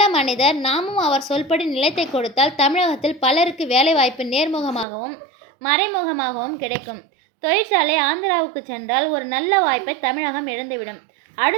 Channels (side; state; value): left; drops out; at 4.9 s